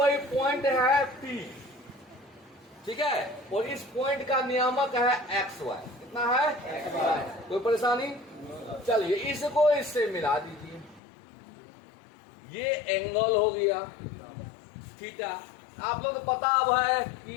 पॉइंट है P, ठीक है, और इस पॉइंट का नियामक है XY। कितना है? कोई परेशानी? चलिए इसको इससे मिला दीजिए। ये एंगल हो गया थीटा। आप लोग को पता अब है कि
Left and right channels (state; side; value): drops out; right; at 11.0 s